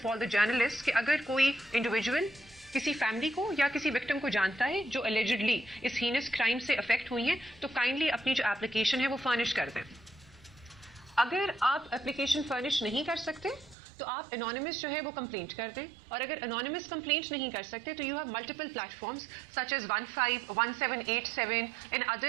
all the journalists کہ اگر کوئی انڈیویجول کسی فیملی کو یا کسی وکٹم کو جانتا ہے جو allegedly اس ہینس کرائم سے افیکٹ ہوئی ہیں تو کائنڈلی اپنی جو اپلیکیشن ہے وہ فرنش کر دیں. اگر آپ اپلیکیشن فرنش نہیں کر سکتے تو آپ انانیمس جو ہے وہ کمپلینٹ کر دیں، اور اگر انانیمس کمپلینٹ نہیں کر سکتے تو you have multiple platforms such as 151787 and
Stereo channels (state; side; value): drops out; left; at 13.8 s